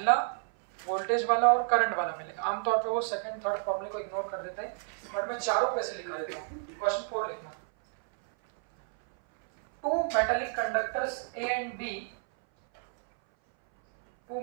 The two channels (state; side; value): silent; left; 58 dB below the other